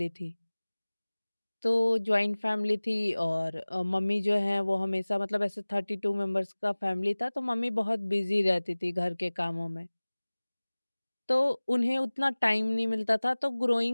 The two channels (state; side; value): inverted; both; correlation -1.00